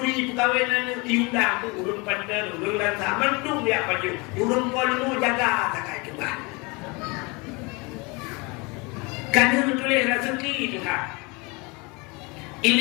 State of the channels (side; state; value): right; quieter; 27.6 dB